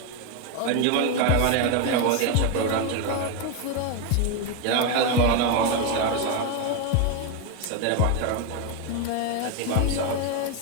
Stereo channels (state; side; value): different; both; correlation 0.01